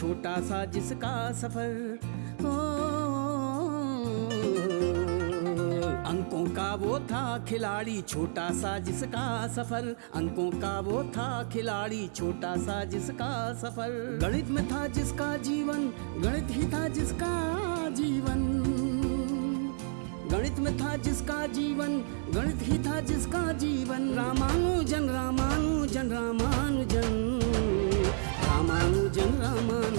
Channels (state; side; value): silent; left; digital silence